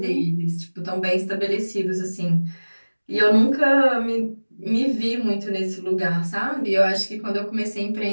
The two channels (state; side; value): inverted; both; correlation -1.00